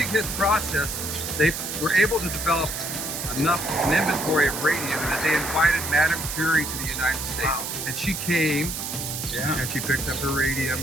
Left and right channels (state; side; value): noise; right; hiss, 5 dB below the sound